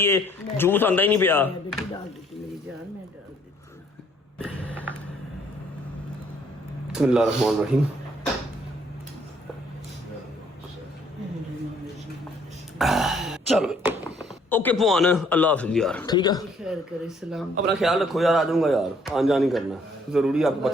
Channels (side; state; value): both; normal; correlation 0.64